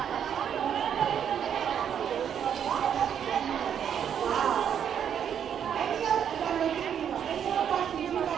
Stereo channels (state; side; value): quieter; left; 8.6 dB